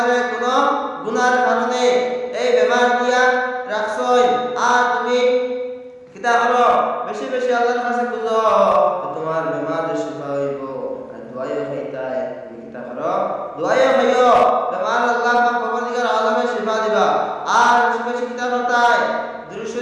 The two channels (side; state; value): both; identical; correlation 1.00